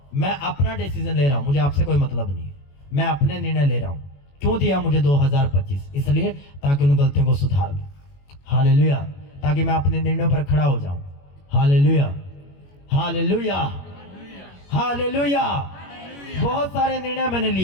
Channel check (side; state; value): right; late; 21 ms